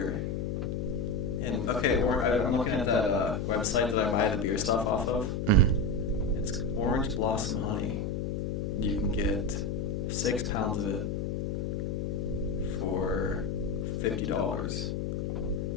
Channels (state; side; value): noise; left; hum, 1 dB below the sound